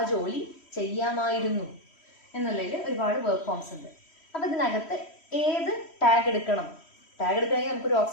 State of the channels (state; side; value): late; right; 3.1 ms